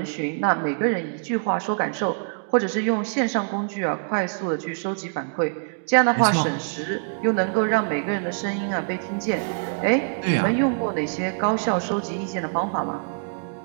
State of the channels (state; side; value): silent; left; digital silence